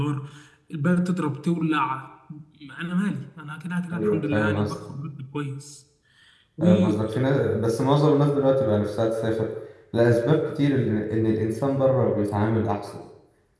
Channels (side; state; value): both; identical; correlation 1.00